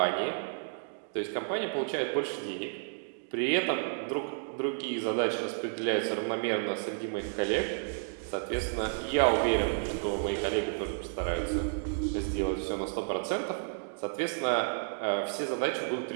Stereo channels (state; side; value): silent; left; digital silence